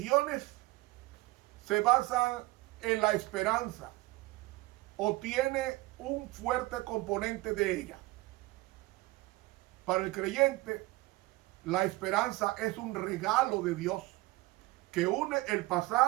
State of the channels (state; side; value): quieter; left; 20.2 dB